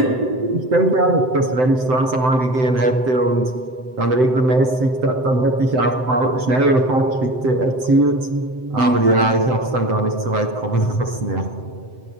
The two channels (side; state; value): left; late; 7.8 ms